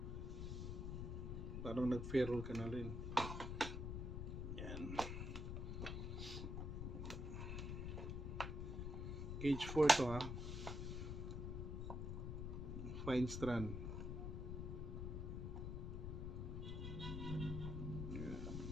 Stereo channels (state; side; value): noise; left; rumble, 3 dB below the sound